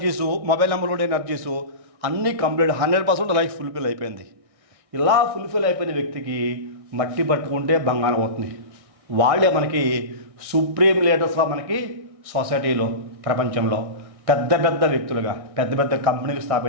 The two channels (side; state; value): left; late; 1.6 ms